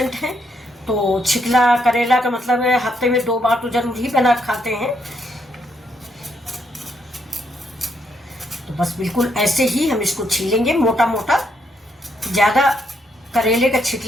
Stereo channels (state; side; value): normal; both; correlation 0.76